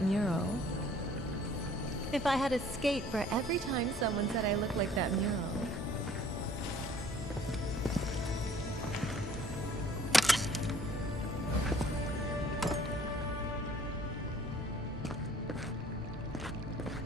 mural. If I had a skate for every time someone said I look like that mural.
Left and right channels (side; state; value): both; normal; correlation 0.55